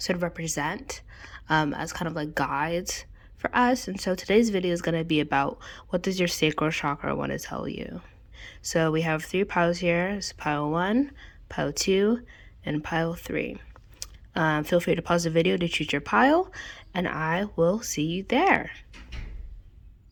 of represent as kind of like guides for us. And so today's video is going to be about what does your sacral chakra want to tell you. So we have 3 piles here. It's pile 1, pile 2, and pile 3. Feel free to pause the video to choose your pile, and I will see you there.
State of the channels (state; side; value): identical; both; correlation 1.00